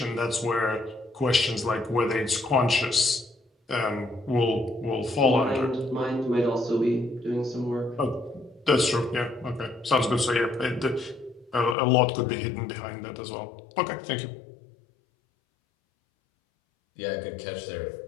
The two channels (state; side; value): drops out; right; at 11.8 s